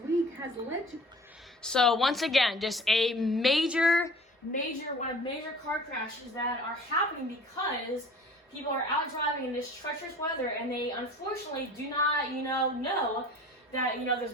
has led to... So once again, just a major car crashes that are happening because people are out driving in this treacherous weather, and they unfortunately do not, know that, there's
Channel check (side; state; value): both; normal; correlation 0.45